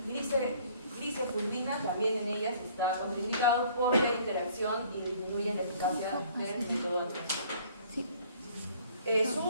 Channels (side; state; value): both; inverted; correlation -0.56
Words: glicofulvina, también en ellas está contraindicado por la interacción y disminuyen la eficacia del método anticonceptivo. Su